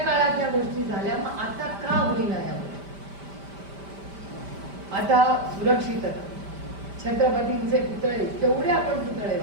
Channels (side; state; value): left; late; 5.1 ms